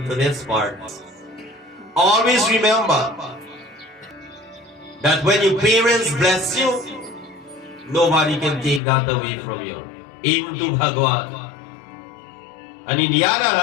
to this part. Always remember that when your parents bless you, nobody can take that away from you, even to Bhagwan. And in the other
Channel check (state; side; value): drops out; right; at 8.8 s